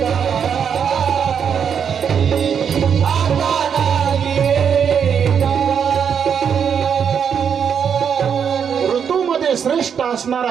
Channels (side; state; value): left; quieter; 7.4 dB